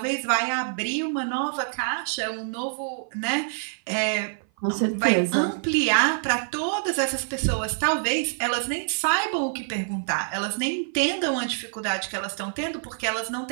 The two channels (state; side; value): silent; left; 55 dB below the other